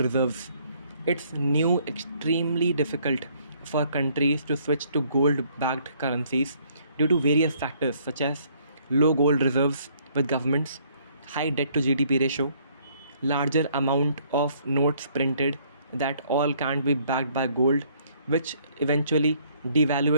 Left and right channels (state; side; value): inverted; both; correlation -0.64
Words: reserves. It's new extremely difficult for countries to switch to gold backed currencies due to various factors such as low gold reserves with governments, high debt to GDP ratio, larger amount of notes printed that all can't be backed by gold, which eventually